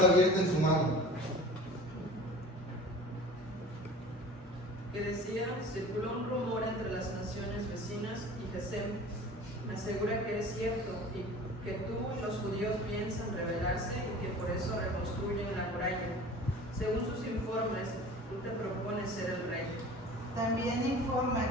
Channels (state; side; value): normal; both; correlation 0.41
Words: abierta en su mano. Que decía: circuló un rumor entre las naciones vecinas y Gesem me asegura que es cierto y que tú y los judíos piensan rebelarse y que por eso reconstruyen la muralla. Según sus informes, tú te propones ser el rey. También